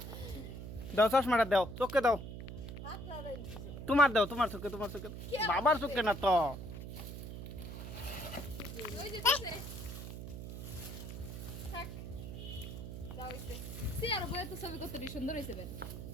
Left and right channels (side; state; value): right; noise; hum, 8 dB below the sound